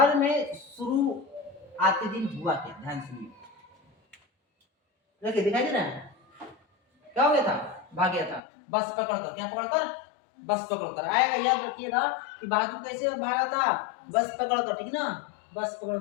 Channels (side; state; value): right; drops out; at 8.4 s